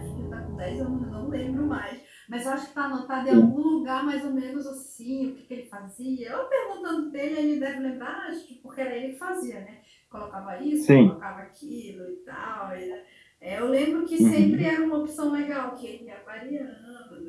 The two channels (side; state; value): both; identical; correlation 1.00